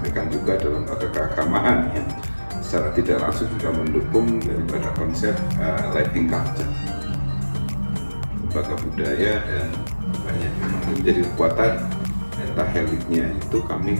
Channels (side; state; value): both; inverted; correlation -1.00